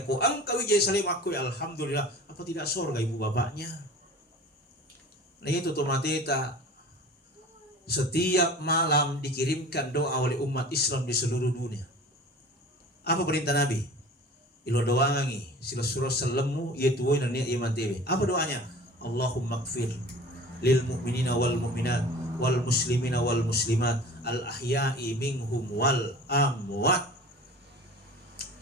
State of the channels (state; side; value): normal; both; correlation 0.41